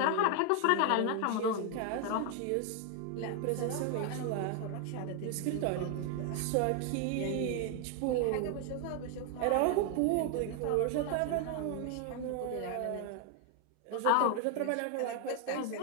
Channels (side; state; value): both; different; correlation 0.01